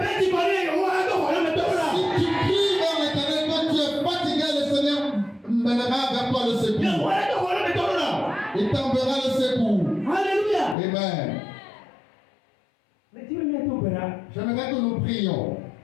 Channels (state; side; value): drops out; right; at 10.8 s